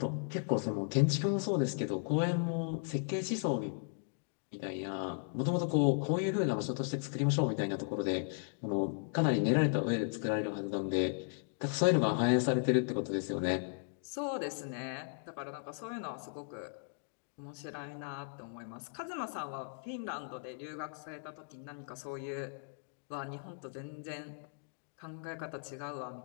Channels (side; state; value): right; silent; digital silence